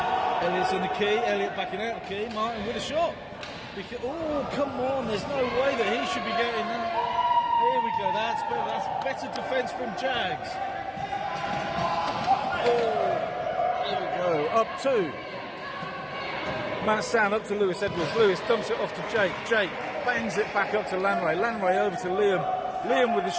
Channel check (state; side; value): identical; both; correlation 1.00